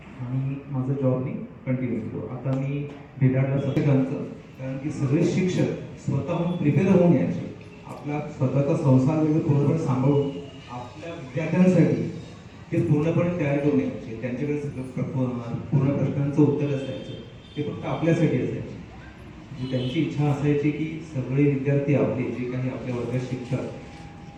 आणि माझं जॉब मी कंटिन्यू केलो. आता मी भेटायला सगळ्यांचं, कारण की सगळे शिक्षक स्वतःहून प्रिपेअर होऊन यायचे. आपला स्वतःचा संसार वगैरे पूर्णपणे सांभाळून आपल्या विद्यार्थ्यांसाठी ते पूर्णपणे तयार करून यायचे. त्यांच्याकडे सगळं पूर्ण प्रश्नांचं उत्तर असायचं, ते फक्त आपल्यासाठी असायचे. म्हणजे त्यांची इच्छा असायची की सगळे विद्यार्थी आपले जे काही आपल्या वर्गात शिकतात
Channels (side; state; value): both; identical; correlation 1.00